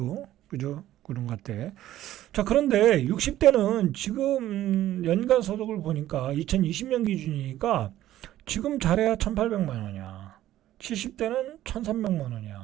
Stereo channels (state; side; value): quieter; left; 13.6 dB